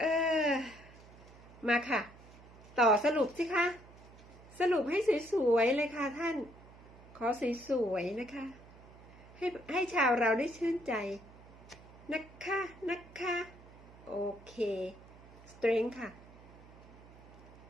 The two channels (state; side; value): noise; right; hum, 21 dB below the sound